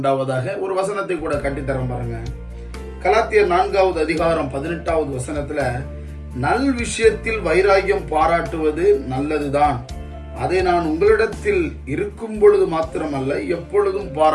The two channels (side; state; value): both; identical; correlation 1.00